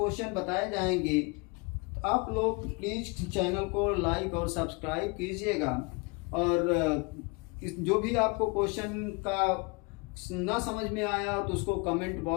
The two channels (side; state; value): right; quieter; 29.6 dB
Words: बताए जाएंगे। आप लोग प्लीज चैनल को लाइक और सब्सक्राइब कीजिएगा, और जो भी आपको क्वेश्चन का ना समझ में आया तो उसको कमेंट